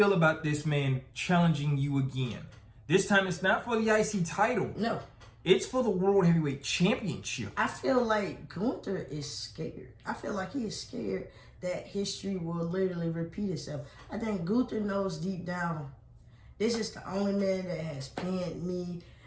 about this man challenging you again? This time, it's not for the IC title. No. It's for the World Heavyweight Championship. I feel like Gunther is scared. I feel like he is scared that history will literally repeat itself. I think Gunther knows deep down, this is the only man that has pinned me.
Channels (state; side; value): identical; both; correlation 1.00